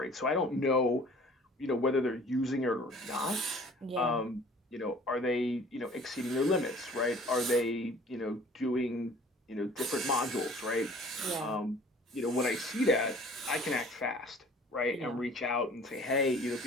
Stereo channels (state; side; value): normal; both; correlation 0.50